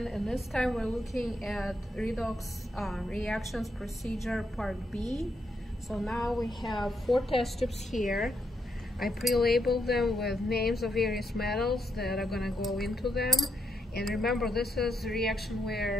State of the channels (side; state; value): both; normal; correlation 0.79